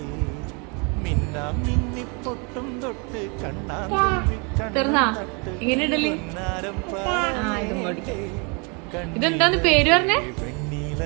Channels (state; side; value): quieter; left; 33.1 dB